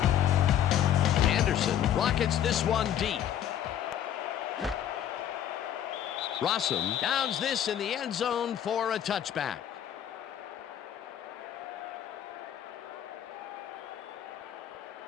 Anderson rockets this one deep. Rossum downs this in the end zone for a touchback.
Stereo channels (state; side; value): quieter; right; 10.4 dB